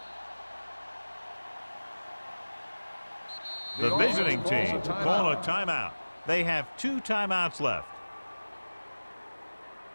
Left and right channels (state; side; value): inverted; both; correlation -1.00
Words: The visiting team call a timeout. They have 2 timeouts left.